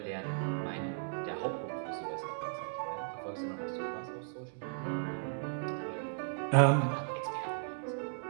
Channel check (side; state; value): left; silent; digital silence